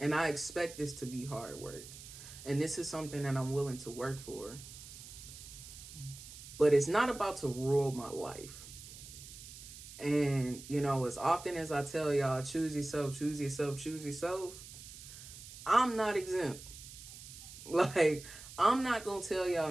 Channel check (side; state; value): right; noise; hiss, 14 dB below the sound